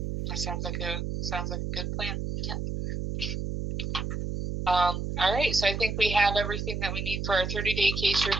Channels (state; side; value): noise; right; hum, 3 dB below the sound